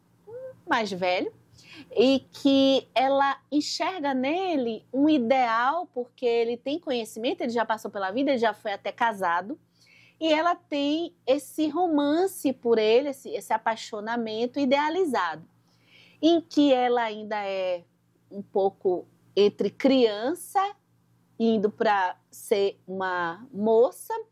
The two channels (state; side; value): identical; both; correlation 1.00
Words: mais velho, e que ela enxerga nele um ideal, porque ele tem conhecimento, ele já passou pela vida, ele já foi até casado, e ela tem esse romance por ele, esse apaixonamento idealizado, em que ela ainda é um pouco entre criança, indo para ser uma moça.